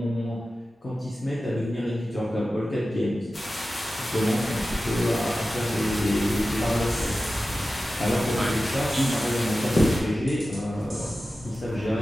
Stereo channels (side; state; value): both; normal; correlation 0.94